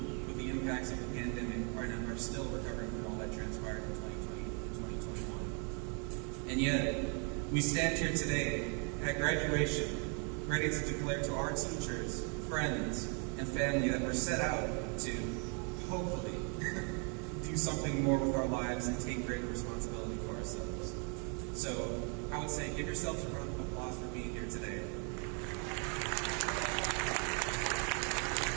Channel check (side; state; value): left; quieter; 37.4 dB